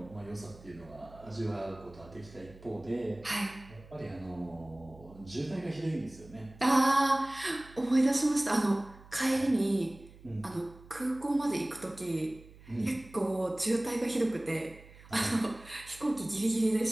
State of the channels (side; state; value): right; noise; hum, 21 dB below the sound